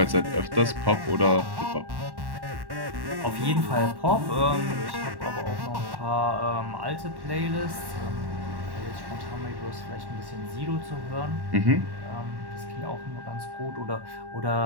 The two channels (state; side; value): late; left; 1.1 ms